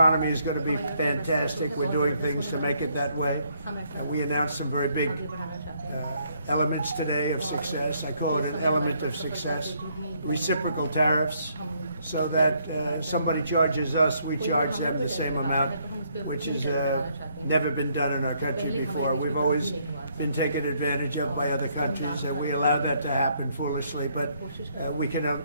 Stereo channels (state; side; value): inverted; both; correlation -0.70